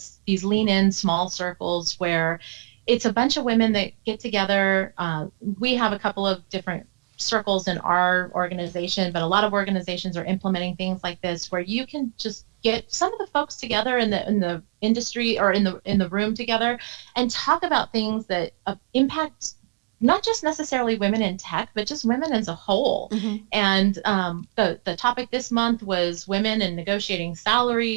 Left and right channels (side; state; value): left; quieter; 29.5 dB